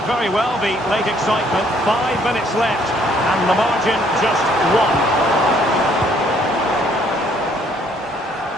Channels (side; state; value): both; normal; correlation 0.64